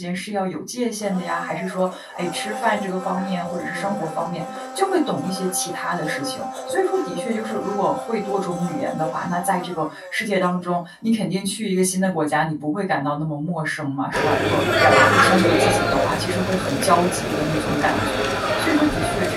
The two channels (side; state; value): both; identical; correlation 1.00